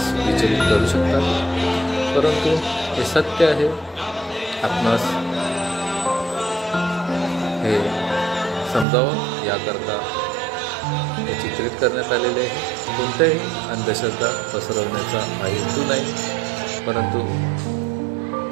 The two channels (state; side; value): drops out; left; at 8.8 s